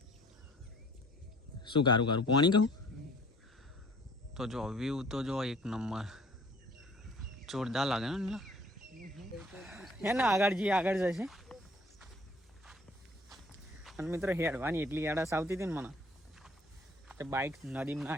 શું કારું પાણી કહું તો જો વ્યૂ તો જો એક નંબર જોરદાર લાગે ને. હે ને આગળ જઈએ, આગળ જશે. અને મિત્રો હેડવાની એટલી આળસ આવતી હતી ને મને કે બાઇક નદીમાં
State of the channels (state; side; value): normal; both; correlation 0.54